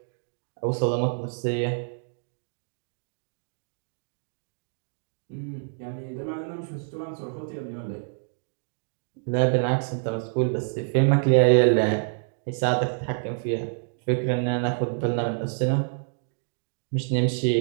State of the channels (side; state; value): left; silent; digital silence